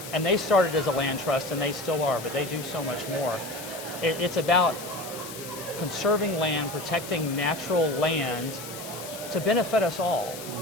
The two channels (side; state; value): left; noise; hiss, 12 dB below the sound